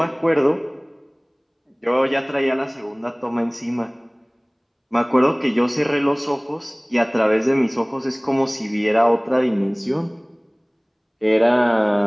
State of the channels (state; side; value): identical; both; correlation 1.00